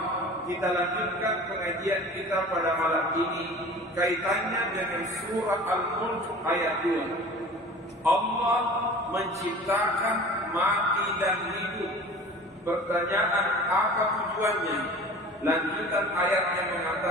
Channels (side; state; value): both; normal; correlation 0.41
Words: kita lanjutkan pengajian kita pada malam ini kaitannya dengan surah Al-Mulk ayat 2. Allah menciptakan mati dan hidup. Pertanyaan, apa tujuannya? Lanjutan ayat yang